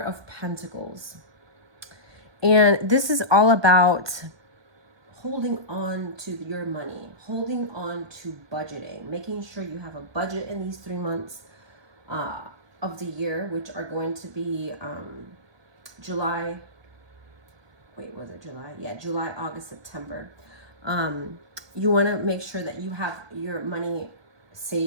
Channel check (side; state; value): left; late; 1.2 ms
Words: Pentacles. And this is all about holding on to your money, holding on to budgeting, making sure you have a budget in these 3 months of the year, which are going to be July, July, August, September. You want to make sure that you have your money